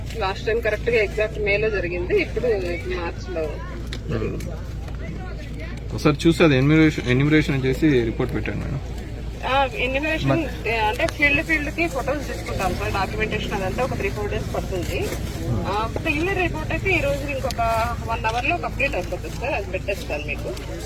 లాస్ట్ టైం కరెక్ట్ గా ఎగ్జాక్ట్ మేలో జరిగింది. ఇప్పుడు మార్చ్ లో ఒకసారి చూసి అది ఎన్యూమరేషన్ చేసి రిపోర్ట్ పెట్టండి మేడం. ఎన్యూమరేషన్ అంటే ఫీల్డ్ కి ఫొటోస్ తీసుకుంటాం సార్. డాక్యుమెంటేషన్ అదంతా ఒక 3-4 డేస్ పడుతుంది. క్లియర్ రిపోర్ట్ అయితే ఈ రోజు ఇంకొక 1 hour లో కంప్లీట్ అయిపోతుంది సార్. అది పెట్టేస్తాను మీకు.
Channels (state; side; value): identical; both; correlation 1.00